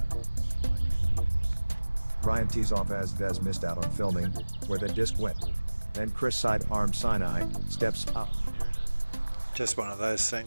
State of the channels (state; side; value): inverted; both; correlation -1.00